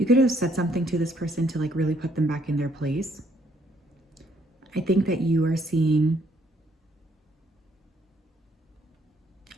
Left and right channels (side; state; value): both; normal; correlation 0.68